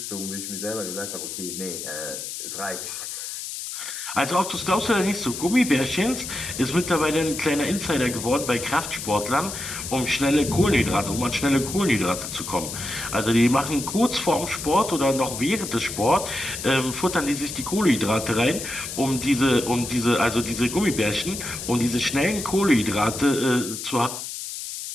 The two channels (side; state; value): left; noise; hiss, 7 dB below the sound